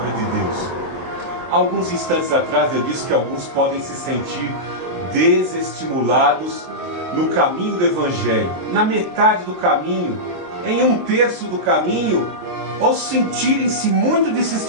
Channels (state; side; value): late; left; 23 ms